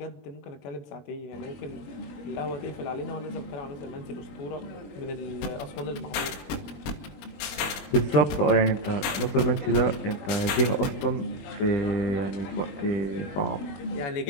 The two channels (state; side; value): late; right; 21 ms